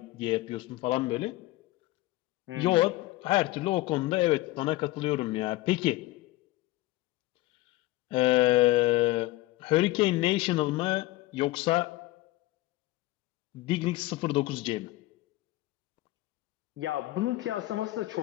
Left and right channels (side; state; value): right; quieter; 18.4 dB